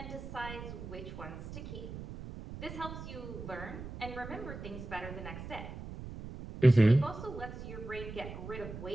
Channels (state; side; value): noise; right; rumble, 10 dB below the sound